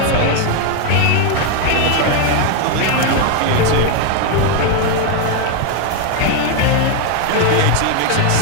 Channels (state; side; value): different; both; correlation 0.01